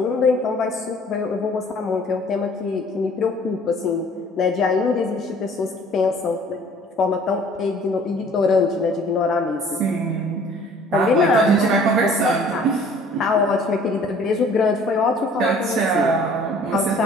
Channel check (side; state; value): both; normal; correlation 0.53